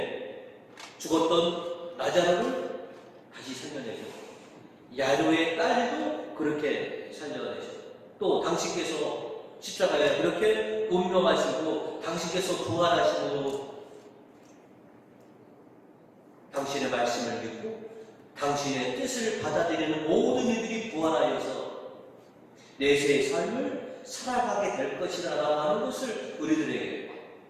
죽었던 라자로를 다시 살려내셨고, 야로의 딸도 그렇게 살려내셨고, 또 당신께서 십자가에 그렇게 운명하시고 당신께서 부활하시고 당신의 말씀을 믿고 당신의 뜻을 받아들이는 모든 이들이 부활하여서 내세의 삶을 살아가게 될 것이라고 하는 것을 우리들에게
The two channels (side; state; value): both; identical; correlation 1.00